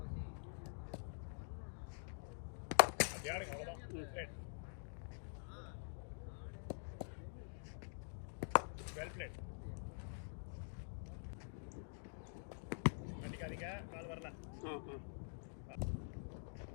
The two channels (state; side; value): silent; right; digital silence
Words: அப்படி ஆடுங்க, அவ்வளோதான். Right, well played. மாட்டிக்காதீங்க, கால் வரல.